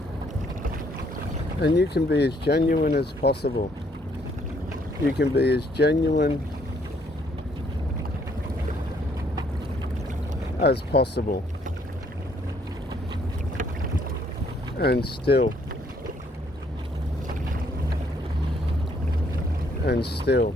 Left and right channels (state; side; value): normal; both; correlation 0.67